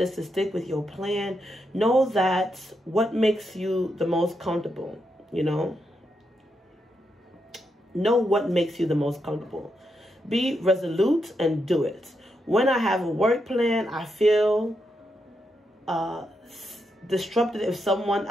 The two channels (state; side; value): normal; both; correlation 0.83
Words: to stick with your plan. Know that what makes you the most comfortable, you know. Know what makes you the most comfortable. Be resolute and do it. When I have a work plan, I feel disrupted if some